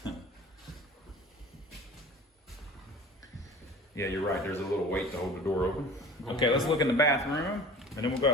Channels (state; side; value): normal; both; correlation 0.41